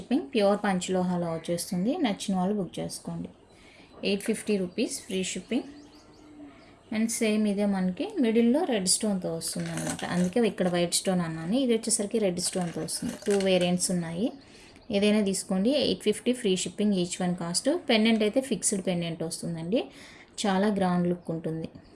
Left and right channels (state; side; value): identical; both; correlation 1.00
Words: Pure పంచలోహాలో వచ్చేస్తుంది. నచ్చిన వాళ్ళు బుక్ చేసుకోండి. 850 rupees free shipping. And same ఇదే మనకి మిడిల్లో రెడ్ స్టోన్తో వస్తుంది అనమాట, అందుకే ఇక్కడ వైట్ స్టోన్ అన్నాను. ఇది వచ్చేసరికి రెడ్ స్టోన్తో వస్తుంది. 2 వేరియంట్స్ ఉన్నాయి, ఏదైనా తీసుకోండి. 850 free shipping each one cost. Pendant అయితే ఫిక్స్డ్ పెండెంట్ వస్తుందండి, చాలా గ్రాండ్ లుక్ ఉంటుంది.